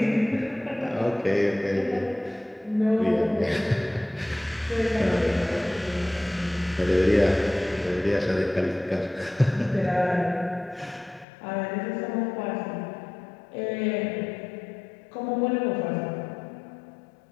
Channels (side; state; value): right; drops out; at 11.2 s